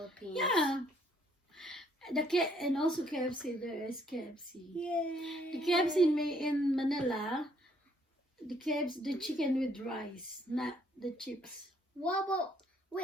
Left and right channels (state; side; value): normal; both; correlation 0.66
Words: yeah, and also KFC. There is KFC. Yay. The KFC in Manila, the chicken with rice, not the chips. What about?